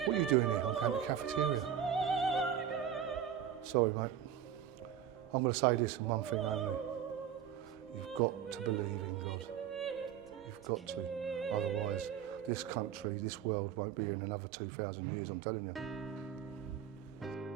What are you doing here? I'm going to the cafeteria. Sorry, mate. I'm going to say this in one thing only. You've got to believe in God. You've got to. Otherwise, this country, this world won't be here in another 2,000 years, I'm telling you.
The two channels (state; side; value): quieter; left; 9.3 dB